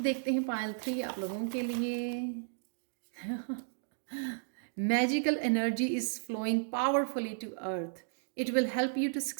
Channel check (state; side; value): silent; left; digital silence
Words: देखते हैं पायल 3 आप लोगों के लिए। Magical energy is flowing powerfully to earth. It will help you to